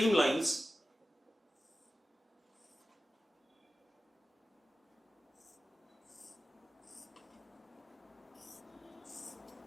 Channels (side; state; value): both; normal; correlation 0.94